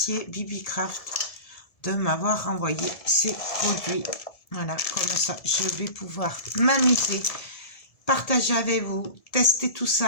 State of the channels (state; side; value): late; right; 1.7 ms